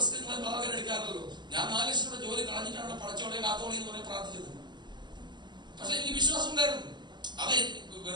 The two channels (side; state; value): left; late; 0.21 ms